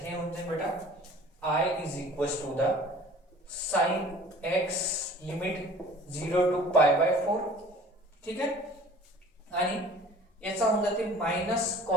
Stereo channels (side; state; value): both; normal; correlation 0.47